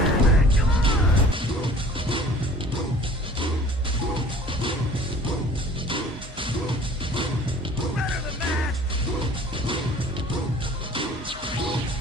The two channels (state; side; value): normal; both; correlation 0.48